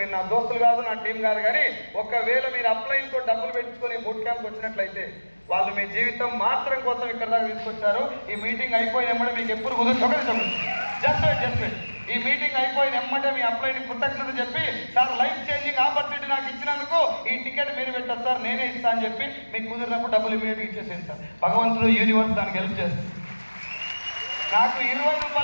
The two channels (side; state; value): both; inverted; correlation -1.00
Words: నా దోస్తులు కాదు, నా టీం కాదు, కానీ ఒకవేళ మీరు అప్లైన్తో డబ్బులు పెట్టుకొని బూట్ క్యాంప్కి వచ్చినట్లయితే వాళ్ళు మీ జీవితం మార్చడం కోసం ఇక్కడ దాకా తీసుకొచ్చారు. ఈ మీటింగ్ అయిపోయిన ఎమ్మటే మీకు ఎప్పుడు కుదురు జస్ట్ ఈ మీటింగ్ అయిపోయిన ఎమ్మటే మీ అప్లైని కృతజ్ఞత చెప్పి, సార్ లైఫ్ చేంజింగ్ ఆపర్చునిటీ నాకు ఇచ్చినందుకు ఈ టికెట్ మీరు పెట్టారు సార్, నేనే ఇస్తా అని చెప్పి మీకు కుదిరినప్పుడు డబ్బులు ఇమీడియట్గా ఇచ్చేసేది సార్. భగవంతుడు యూనివర్స్ దానికి హెల్ప్ చేస్తుంది. నాకు 20